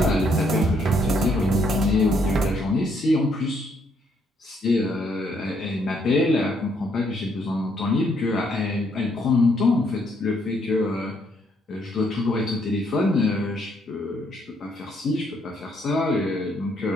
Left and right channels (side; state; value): both; normal; correlation 0.71